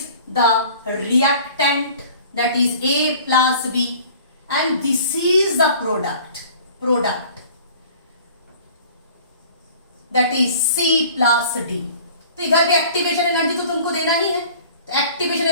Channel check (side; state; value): both; inverted; correlation -0.48